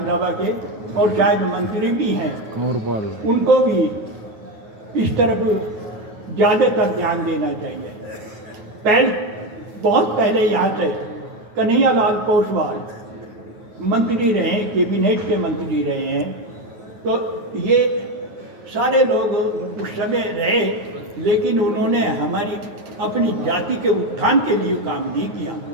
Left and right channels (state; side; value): late; left; 9.4 ms